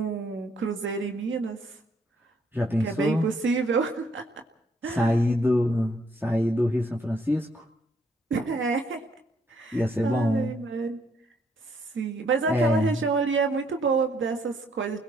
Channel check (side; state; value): both; normal; correlation 0.69